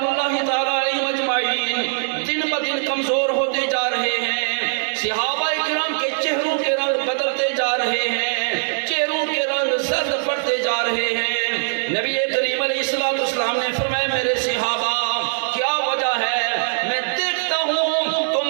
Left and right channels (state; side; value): silent; left; digital silence